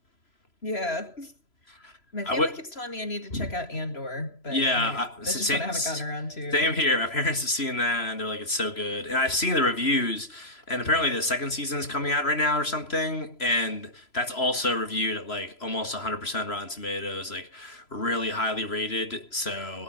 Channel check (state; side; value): late; right; 3.0 ms